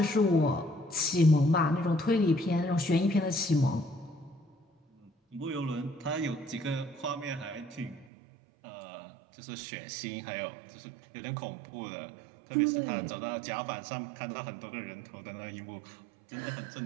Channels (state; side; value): drops out; left; at 8.1 s